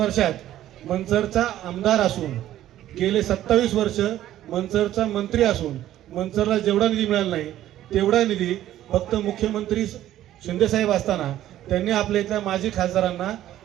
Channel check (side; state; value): left; quieter; 13.0 dB